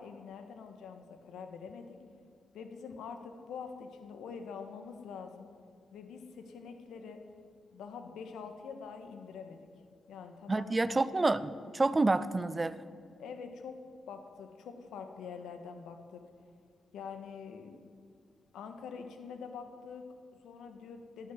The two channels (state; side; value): normal; both; correlation 0.92